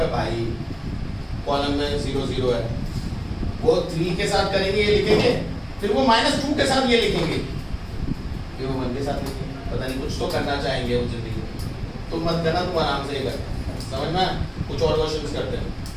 भाई कॉलम में 0 0 है, वो 3 के साथ करेंगे ये लिखेंगे, फिर वो -2 के साथ ये लिखेंगे, फिर वो 1 के साथ लिखेंगे। पता नहीं कुछ तो करना चाहेंगे वो जिंदगी में। तुम मत करना, तुम आराम से ही कर। समझ में? कुछ और क्वेश्चंस करते हैं,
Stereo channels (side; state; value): both; identical; correlation 1.00